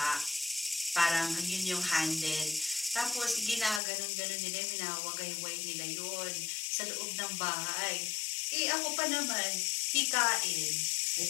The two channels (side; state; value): right; drops out; at 3.8 s